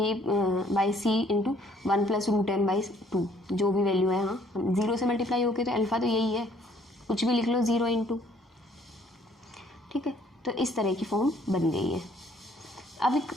by C into 1 plus root M by 2, जो भी वैल्यू है। हाँ, 0 से मल्टीप्लाई होके तो अल्फा तो यही है, कुछ भी लिख लो 0 इंटू। ठीक है, तो इस तरह की फॉर्म बन गई है। अब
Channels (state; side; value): normal; both; correlation 0.62